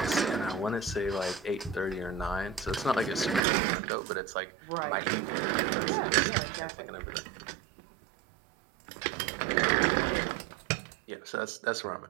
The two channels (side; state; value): left; drops out; at 3.4 s